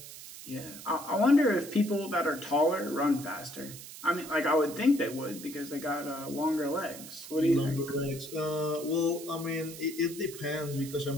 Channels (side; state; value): right; noise; hiss, 14 dB below the sound